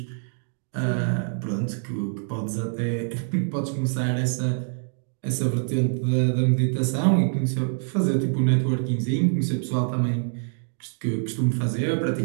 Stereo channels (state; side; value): silent; left; digital silence